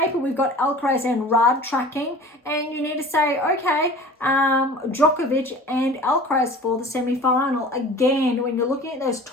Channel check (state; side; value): normal; both; correlation 0.41